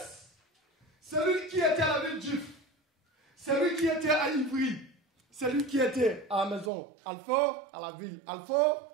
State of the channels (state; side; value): drops out; left; at 6.7 s